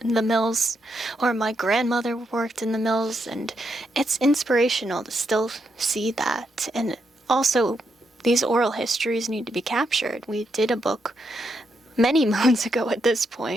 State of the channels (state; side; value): normal; both; correlation 0.80